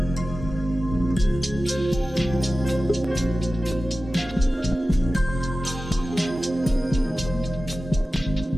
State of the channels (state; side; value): normal; both; correlation 0.95